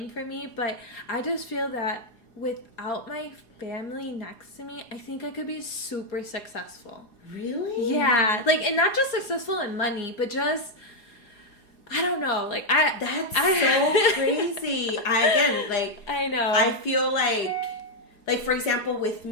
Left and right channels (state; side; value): late; right; 4.8 ms